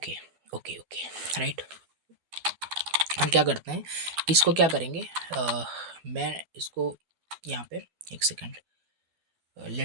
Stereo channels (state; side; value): late; left; 12 ms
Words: ओके ओके, राइट। हम क्या करते हैं, इसको क्या करेंगे, मैं इसको यहाँ पे एक सेकंड,